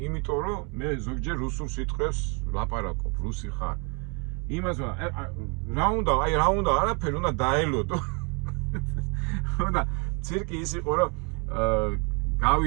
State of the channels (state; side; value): quieter; left; 33.8 dB